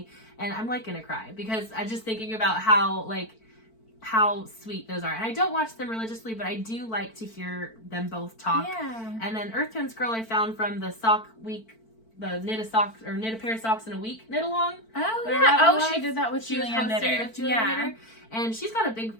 and I'm like gonna cry because I'm just thinking about how sweet those are. And I don't watch them religiously, but I do like to hear them both talk. Yeah. And then Earth Tones Girl I found from the sock week, the knit a pair of socks in a week knit-along. Oh yeah. Oh, she did that with Julianne Knitter. Knitter. And she's got a big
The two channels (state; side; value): late; right; 4.5 ms